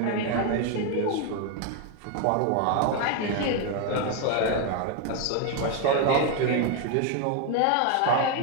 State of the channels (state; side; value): different; both; correlation 0.01